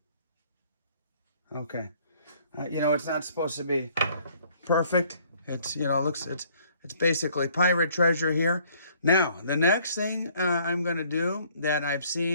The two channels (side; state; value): both; inverted; correlation -0.61